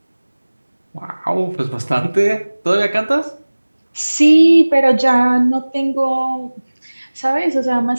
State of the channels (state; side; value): inverted; both; correlation -1.00